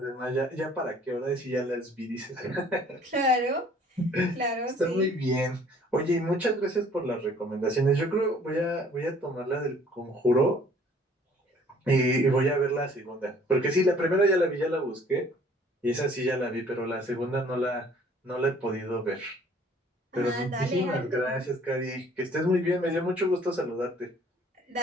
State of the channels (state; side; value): normal; both; correlation 0.56